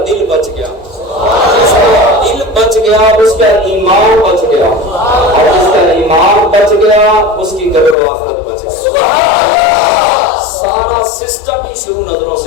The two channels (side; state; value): right; drops out; at 8.0 s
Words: دل بچ گیا، جس کا دل بچ گیا اس کا ایمان بچ گیا، اور جس کا ایمان بچ گیا اس کی قبر و آخرت بچ گئی۔ سارا سسٹم ہی شروع نظروں